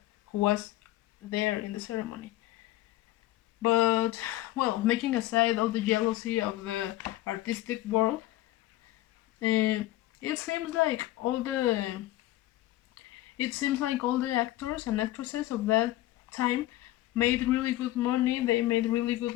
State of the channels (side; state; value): right; quieter; 15.7 dB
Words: who was there in the ceremony. But, well, making aside all the jealousy of the artistic world, it seems like all the actors and actresses of that time made really good money. They made really good